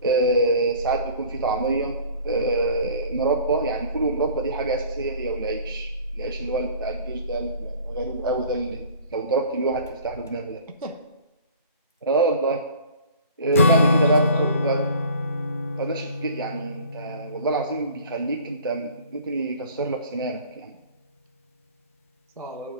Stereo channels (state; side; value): inverted; both; correlation -0.47